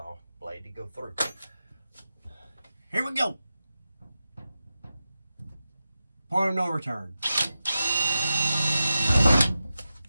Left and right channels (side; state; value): both; inverted; correlation -0.91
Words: blade to go through. Here we go. Point of no return.